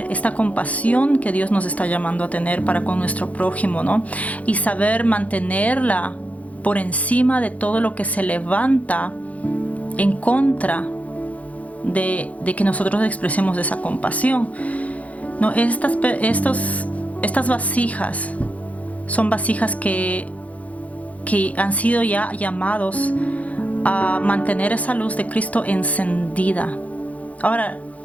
esta compasión que Dios nos está llamando a tener para con nuestro prójimo, ¿no? Y saber mantenerla por encima de todo lo que se levanta en contra de que nosotros expresemos esa compasión, ¿no? Estas vasijas son vasijas que han sido ya llamados a mantener esa luz de Cristo encendida. Ahora,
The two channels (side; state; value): right; late; 0.068 ms